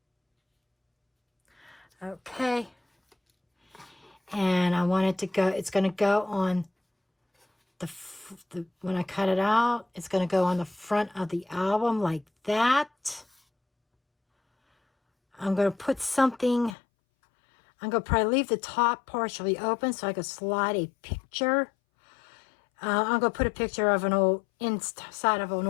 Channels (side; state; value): right; drops out; at 16.8 s